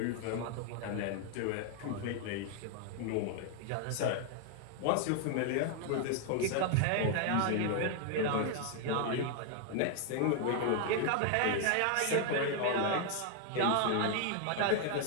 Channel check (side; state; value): both; different; correlation 0.00